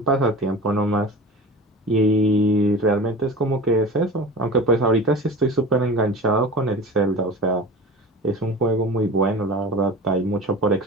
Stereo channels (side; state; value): both; normal; correlation 0.35